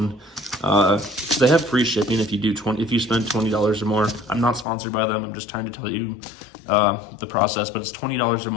They have free shipping if you spend $20 or more. I'm not sponsored by them. I'm just trying to tell you the process, but it's $20 or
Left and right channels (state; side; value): drops out; right; at 4.7 s